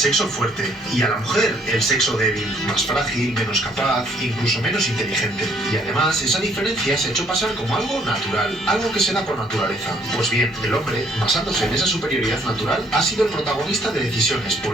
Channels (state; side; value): normal; both; correlation 0.64